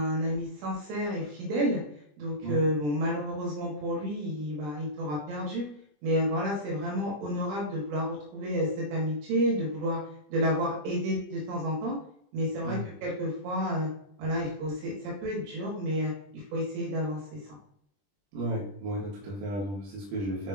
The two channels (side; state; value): left; late; 20 ms